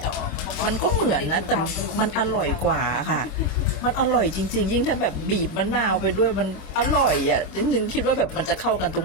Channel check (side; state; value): right; late; 26 ms